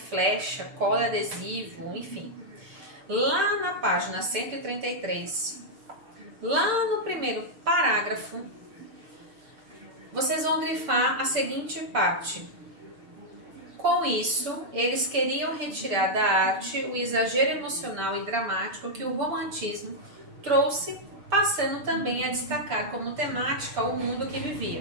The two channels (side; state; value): left; late; 6.7 ms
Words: cola adesivo, enfim. Lá na página 133, lá no primeiro parágrafo, vocês vão grifar a seguinte parte. Com isso, eles queriam retirar da arte o exagero emocional e dramático que o romantismo trouxe, passando também a destacar como temática o mundo que